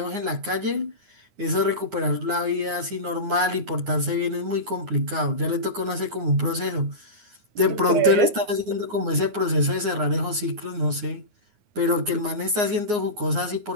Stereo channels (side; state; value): left; late; 9.6 ms